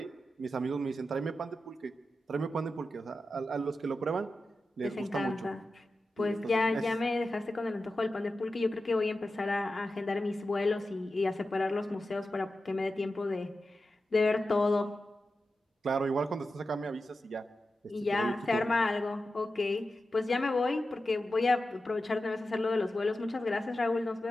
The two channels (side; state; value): both; normal; correlation 0.92